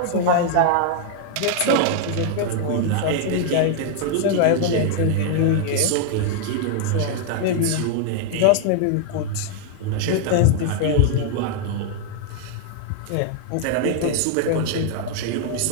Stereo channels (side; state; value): both; different; correlation 0.00